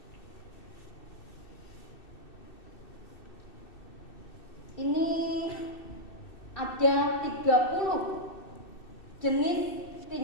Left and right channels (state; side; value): late; right; 2.6 ms